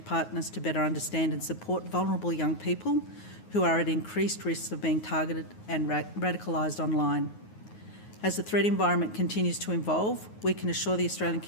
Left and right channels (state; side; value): late; right; 9.5 ms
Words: partners to better understand and support vulnerable young people who are at increased risk of being targeted and radicalised online. As the threat environment continues to evolve, we can assure the Australian